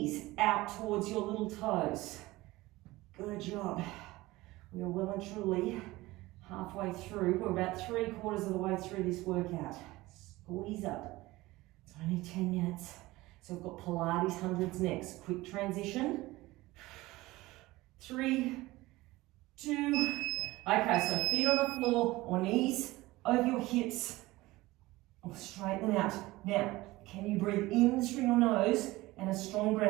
out towards your little toes. Good job. We are well and truly halfway through. We're about 3/4 of the way through this workout. Squeeze up. It's only 10 minutes. So we've got Pilates hundreds next. Quick transition. 3, 2. Okay, so feet on the floor or knees over your hips. Or straighten them out. Now, can you breathe in through your nose and a strong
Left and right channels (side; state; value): left; quieter; 19.3 dB